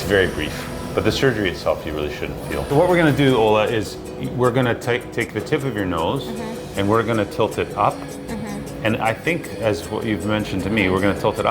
very brief. But the surgery itself, you really shouldn't feel. So what we're going to do, Ola, is we're going to take the tip of your nose and we're going to tilt it up. And I think, as what you've mentioned to me, we're going to tilt it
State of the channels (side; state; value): both; identical; correlation 1.00